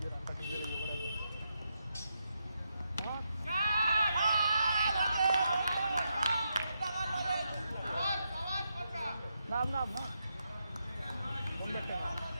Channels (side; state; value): both; inverted; correlation -0.83